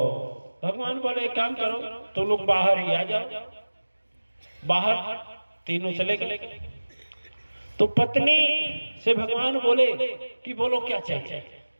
भगवान बोले एक काम करो, तो लोग बाहर ही आ जाओ। बाहर तीनों चले गए। तो पत्नी से भगवान बोले कि बोलो क्या चाहिए,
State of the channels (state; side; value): inverted; both; correlation -1.00